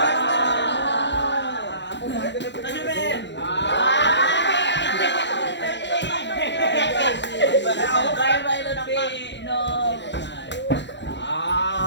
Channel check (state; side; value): late; right; 0.52 ms